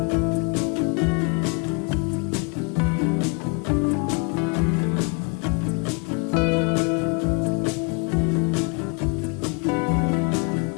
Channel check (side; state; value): right; quieter; 34.4 dB